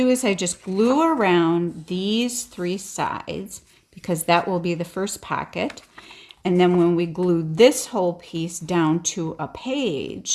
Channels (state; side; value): identical; both; correlation 1.00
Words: is I just glue around these 3 sides, because that will be the first pocket. And then when we glue this whole piece down to a